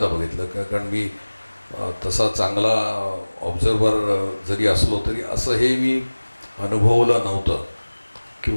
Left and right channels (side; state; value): both; inverted; correlation -1.00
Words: बघितलं. कारण मी तसा चांगला ऑब्झर्वर जरी असलो तरी असं हे मी अनुभवलं नव्हतं.